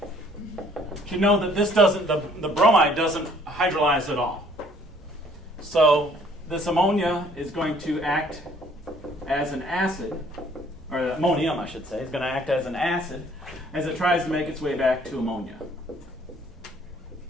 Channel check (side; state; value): both; normal; correlation 0.59